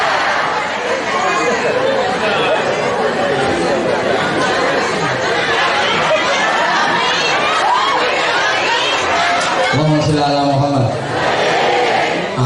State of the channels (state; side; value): identical; both; correlation 1.00